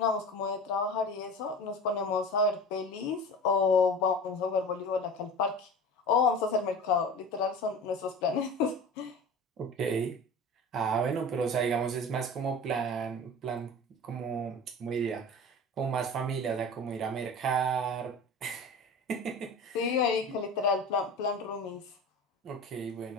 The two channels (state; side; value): normal; both; correlation 0.35